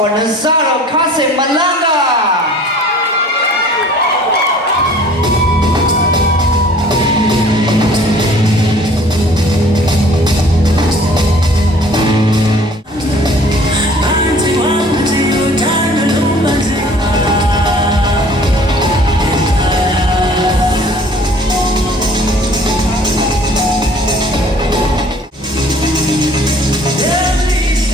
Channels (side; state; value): both; normal; correlation 0.52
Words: Nazaro Kasim Malanga.